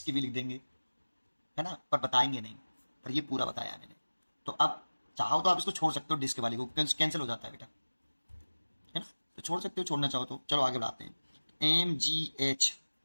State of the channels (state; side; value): inverted; both; correlation -1.00